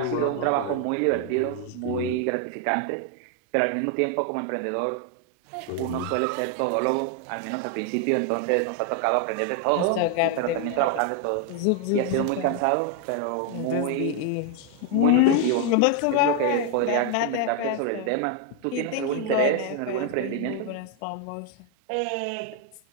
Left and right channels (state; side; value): different; both; correlation 0.01